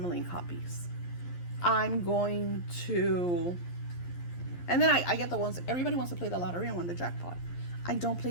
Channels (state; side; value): late; right; 11 ms